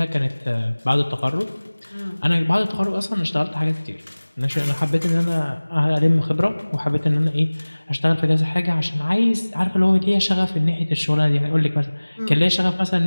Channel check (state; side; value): inverted; both; correlation -1.00